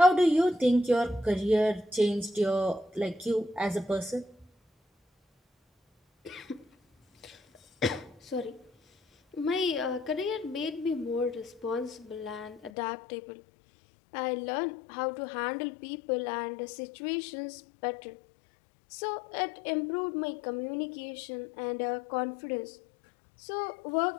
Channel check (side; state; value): right; drops out; at 12.7 s